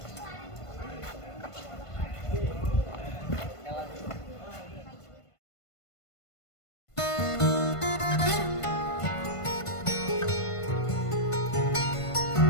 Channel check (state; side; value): late; right; 1.5 ms